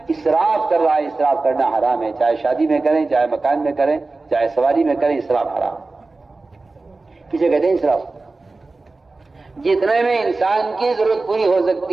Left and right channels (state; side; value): quieter; left; 3.5 dB